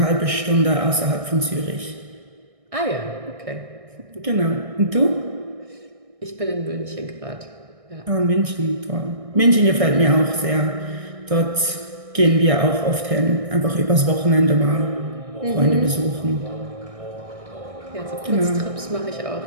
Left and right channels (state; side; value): late; left; 1.6 ms